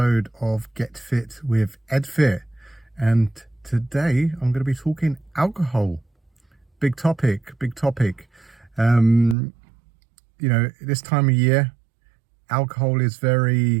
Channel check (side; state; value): left; drops out; at 9.3 s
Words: of Get Fit with EdFit. And today I'm going to be talking alcohol. Big topic, big topic. This time of year, alcohol is